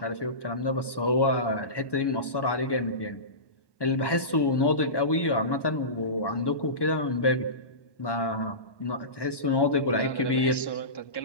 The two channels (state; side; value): late; right; 1.1 ms